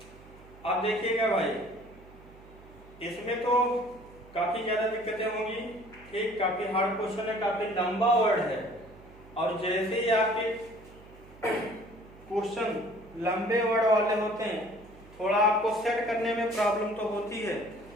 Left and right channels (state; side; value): noise; right; hum, 22 dB below the sound